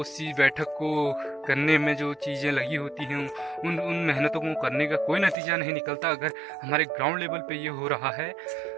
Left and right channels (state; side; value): drops out; left; at 5.4 s